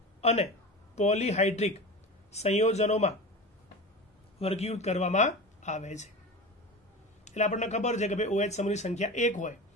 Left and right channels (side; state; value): both; normal; correlation 0.29